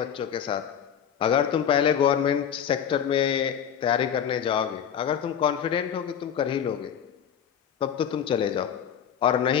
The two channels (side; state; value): right; quieter; 8.7 dB